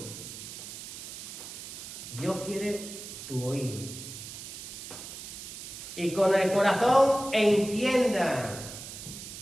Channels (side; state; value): right; noise; hiss, 10 dB below the sound